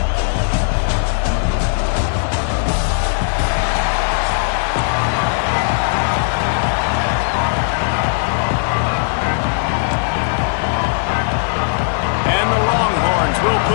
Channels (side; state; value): right; silent; digital silence